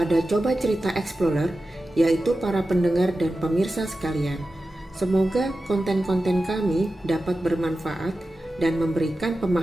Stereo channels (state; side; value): normal; both; correlation 0.93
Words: Coba Cerita Explorer, yaitu para pendengar dan pemirsa sekalian. Semoga konten-konten kami dapat bermanfaat dan memberikan